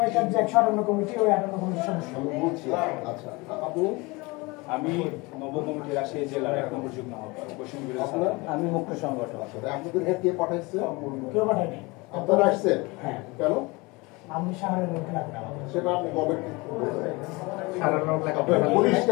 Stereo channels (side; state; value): right; quieter; 25.0 dB